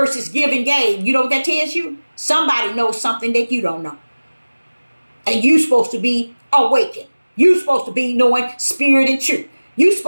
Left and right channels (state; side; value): inverted; both; correlation -1.00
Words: give and gave, you know what that tells you? Somebody knows something that you don't know. And you're supposed to be awakened. You're supposed to be knowing spirit and truth. You're